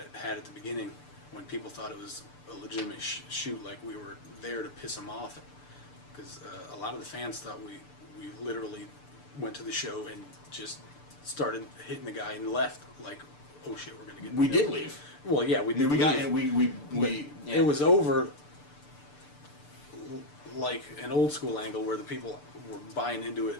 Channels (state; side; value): late; right; 6.8 ms